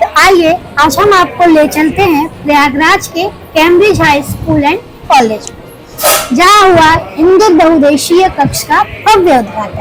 तो आइए आज हम आपको ले चलते हैं प्रयागराज के Cambridge high school and college में, जहाँ हुआ हिंदू बहुउद्देशीय कक्ष का भव्य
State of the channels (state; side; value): identical; both; correlation 1.00